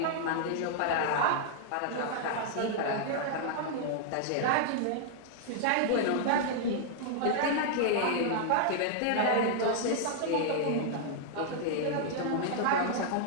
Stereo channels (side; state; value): both; different; correlation -0.01